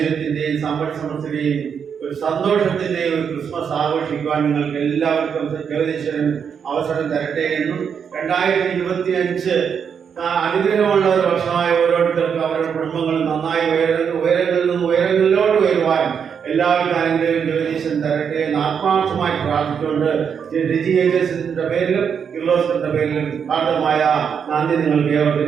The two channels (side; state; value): left; quieter; 7.1 dB